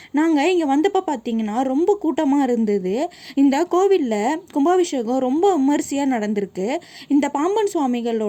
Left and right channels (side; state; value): both; identical; correlation 1.00